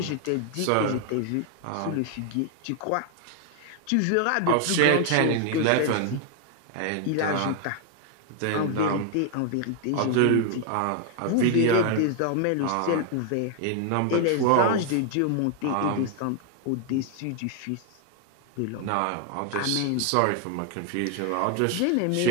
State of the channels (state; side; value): different; both; correlation 0.00